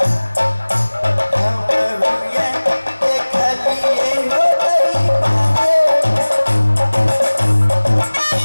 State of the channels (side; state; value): both; inverted; correlation -1.00